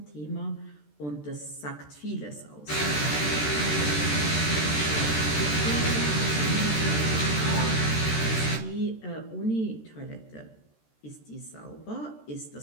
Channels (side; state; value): right; late; 13 ms